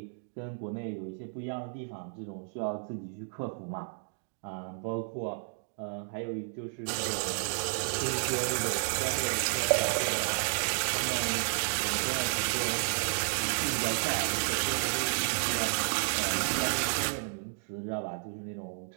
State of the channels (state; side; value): silent; left; 56 dB below the other